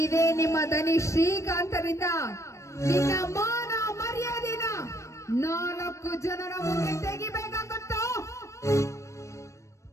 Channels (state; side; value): late; right; 0.15 ms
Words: ನಿಮ್ಮ ದನಿ ಶ್ರೀಕಾಂತರಿಂದ ನಿನ್ನ ಮಾನ ಮರ್ಯಾದೆನ 4 ಜನರ ಮುಂದೆ ತೆಗಿಬೇಕಾಗುತ್ತೋ?